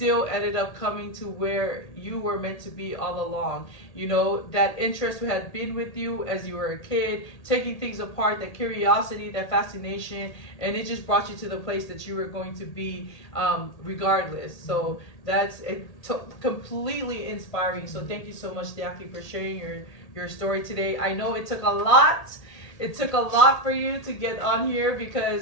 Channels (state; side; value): late; right; 1.8 ms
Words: ended up coming to where you were meant to be all along. That interest had been with you as you were a kid, taking things apart, that curiosity, that fascination, and it just brought you to the place that you were going to be regardless. So that's completely inspiring. So thank you so much, Deaki, for sharing your story today. I know it took a lot. It took a lot for you to get on here,